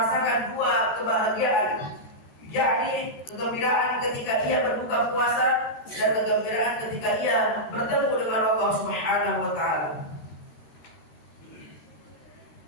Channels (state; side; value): late; right; 13 ms